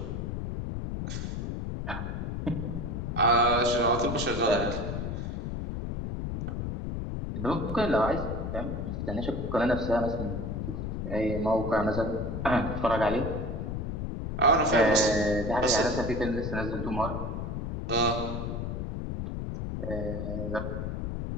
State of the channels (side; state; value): left; noise; rumble, 4 dB below the sound